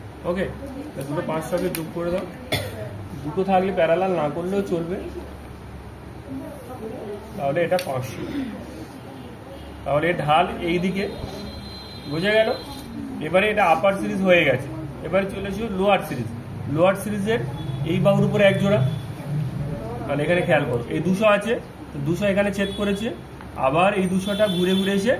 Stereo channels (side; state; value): both; identical; correlation 1.00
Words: ওকে, দুটো 500কে যোগ করে দাও। দুটো থাকলে প্যারালাল না করলেও চলবে, তাহলে এটা 500। তাহলে ঢাল এই দিকে, বোঝা গেল? এবারে এটা আপার সিরিজ হয়ে গেছে, এবারে চলে এসো লোয়ার সিরিজ। লোয়ার সিরিজের এই বাহুর উপরে এক জোড়া, তাহলে এখানে খেয়াল করো, এই 200 আছে, 200 এখানে ছেদ করেছে, আবার এই 200টা ঘুরে ঘুরে এসে